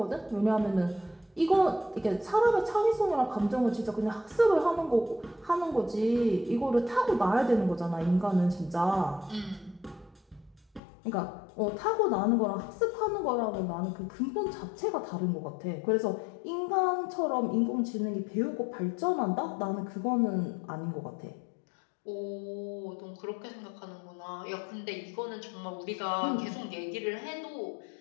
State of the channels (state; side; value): drops out; right; at 10.8 s